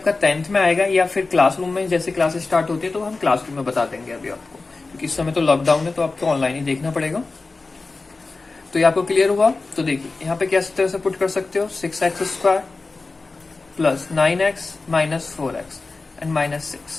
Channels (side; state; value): right; quieter; 3.7 dB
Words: 10th में आएगा, या फिर क्लासरूम में जैसे क्लासेस स्टार्ट होती है तो हम क्लासरूम में बता देंगे अभी आपको, क्योंकि इस समय तो लॉकडाउन है तो आपको ऑनलाइन ही देखना पड़ेगा। तो ये आपको क्लियर हुआ। तो देखिए यहाँ पे क्या तरह से पुट कर सकते हो 6x square plus 9x minus 4x and minus